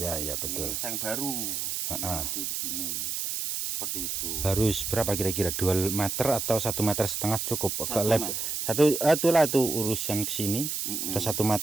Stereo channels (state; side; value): noise; right; hiss, 2 dB below the sound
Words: betul. Seng baru. Nanti di sini. Seperti itu. Harus berapa kira-kira? 2 meter atau 1,5 meter cukup? 1 meter. Itulah itu urusan ke sini. Ada 1